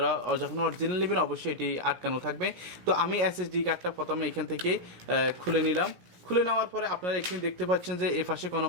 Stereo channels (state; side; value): late; left; 17 ms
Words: যখন অরিজিনাল নেবেন অবশ্যই এটি আটকানো থাকবে। তো আমি এসএসডি কার্ডটা প্রথমে এখান থেকে খুলে নিলাম। খুলে নেওয়ার পরে আপনারা এখানে দেখতে পাচ্ছেন যে এ পাশে কোনো